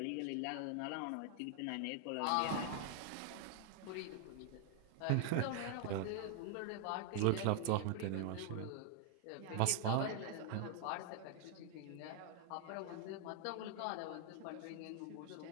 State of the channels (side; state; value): both; different; correlation 0.00